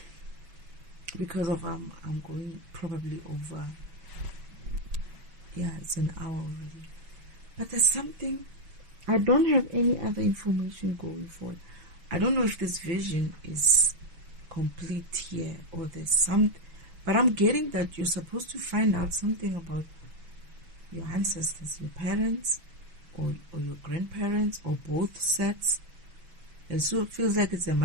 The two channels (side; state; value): left; late; 6.1 ms